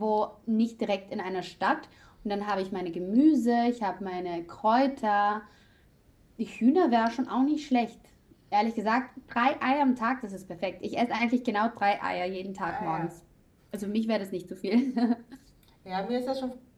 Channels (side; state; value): both; identical; correlation 1.00